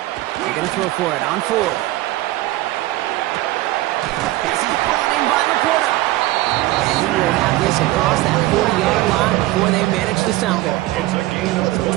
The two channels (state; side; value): quieter; left; 17.4 dB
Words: They're going to throw for it on 4th. This is brought in by Laporta. And he will have this across that 40-yard line before they manage to stop him. It's a gain